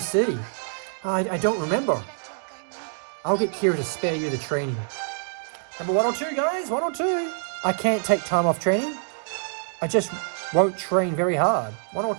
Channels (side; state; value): left; silent; 61 dB below the other